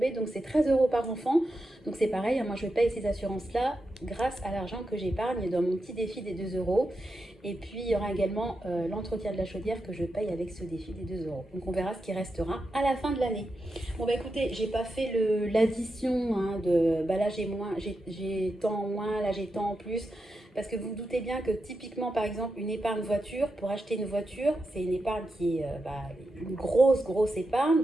donc c'est 13 euros par enfant. Donc c'est pareil, hein, moi je paye ces assurances-là grâce à l'argent que j'épargne dans mon petit défi des 2 euros. Et puis il y aura également l'entretien de la chaudière que je paye avec ce défi des 2 euros. Donc on verra ce qui restera à la fin de l'année. Bon bah écoutez, j'ai pas fait l'addition hein, de bah là j'ai tant en moins, là j'ai tant en plus. Parce que vous vous doutez bien que typiquement, par exemple, une épargne voiture, pour acheter une voiture, c'est une épargne qui est une grosse épargne.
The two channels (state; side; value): normal; both; correlation 0.88